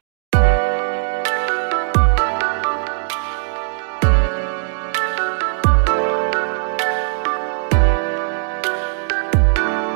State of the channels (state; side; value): silent; left; 63 dB below the other